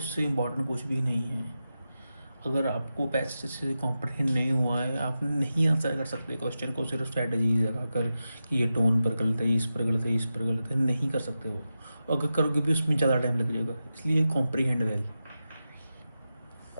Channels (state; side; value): inverted; both; correlation -0.91